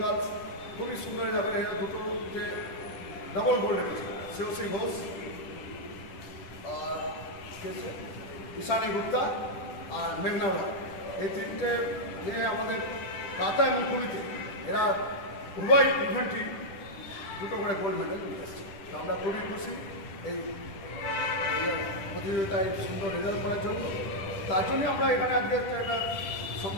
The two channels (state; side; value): late; right; 10 ms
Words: গার্লস খুবই সুন্দর যাবে, এরা দুটোতে ডবল গোল্ড রেখেছে, শ্রেয়সী ঘোষ আর ঈশানী গুপ্তা আর মেঘনা রয়। এই 3টে মেয়ে আমাদের কাতা এবং কুমিতে এরা উভয় ইভেন্টই 2টো করে গোল্ড মেডেল নিয়ে এসছে। তো আমরা খুবই খুশি এই প্রতিযোগিতায় সুন্দর রেজাল্ট করার জন্য। তার জন্যই আমরা এখানে আজকে একটা